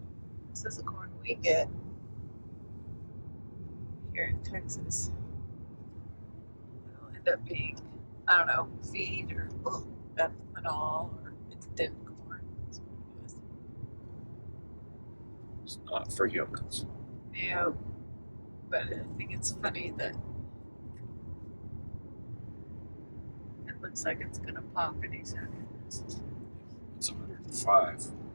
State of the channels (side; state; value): both; inverted; correlation -1.00